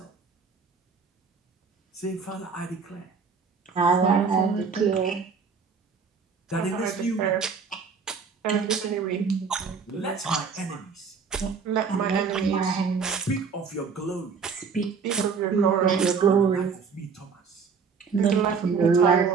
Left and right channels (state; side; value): quieter; left; 5.6 dB